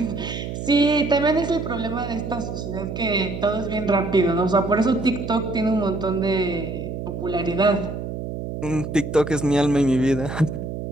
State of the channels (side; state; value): right; noise; hum, 6 dB below the sound